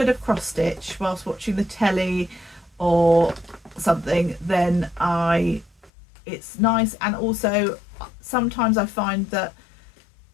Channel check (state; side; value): drops out; right; at 5.9 s